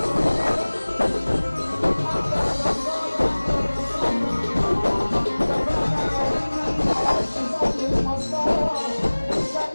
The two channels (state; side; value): inverted; both; correlation -1.00